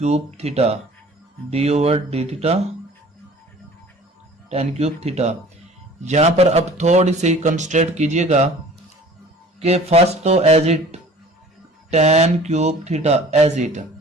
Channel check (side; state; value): both; normal; correlation 0.47